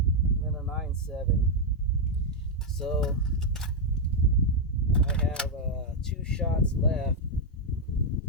then a 9-7. So I have 2 shots left.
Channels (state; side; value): normal; both; correlation 0.00